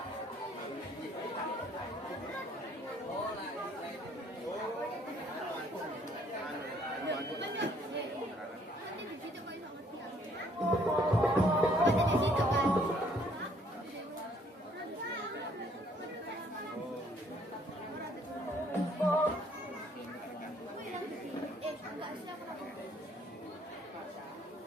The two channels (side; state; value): both; normal; correlation 0.63